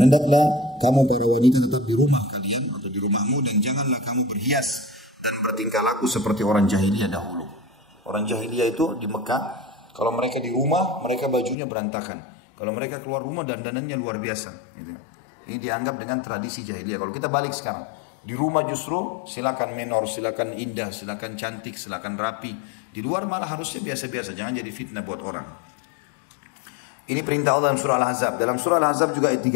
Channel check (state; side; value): drops out; right; at 11.6 s